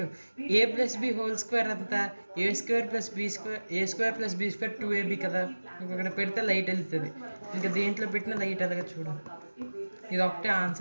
a plus b whole square అంతా a square plus b square, a square plus b square 2ab కదా. ఇంకొకటి పెడితే లైట్ వెళ్తుంది, ఇంకా దేంట్లో పెట్టినా లైట్ అలాగా. చూడు, ఇది ఒకటే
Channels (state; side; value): inverted; both; correlation -1.00